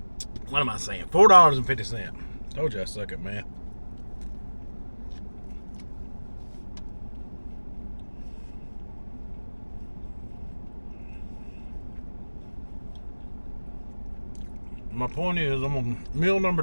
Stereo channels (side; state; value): both; inverted; correlation -1.00